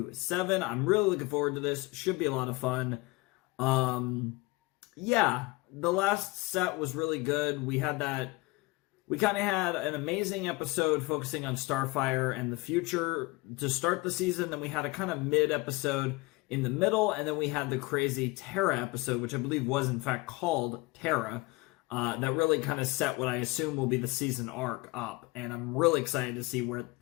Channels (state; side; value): quieter; right; 22.8 dB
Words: 7. I'm really looking forward to this. Should be a lot of fun. Yeah, the last set was really good. We kind of had an amazing episode focusing on Starfire and the future to start the season. Then we had a kind of mid-episode in the middle, and then we had the crazy Terra episode, which I believe was in fact called Terra, that really kind of set what I assume will be the season arc up. And I'm really excited to see what